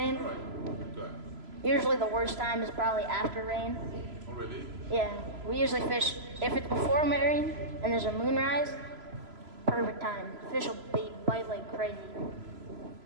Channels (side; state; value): left; late; 3.0 ms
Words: All right, good. Usually the worst time is probably after rain. Oh, really? Yeah, we usually fish, if it's before rain and there's a moonrise, perfect time. Fish will bite like crazy.